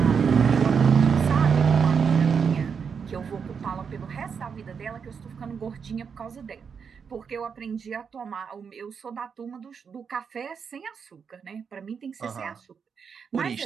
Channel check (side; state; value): left; quieter; 6.4 dB